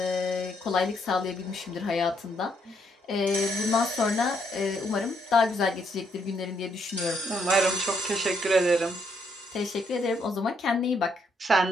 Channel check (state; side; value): normal; both; correlation 0.74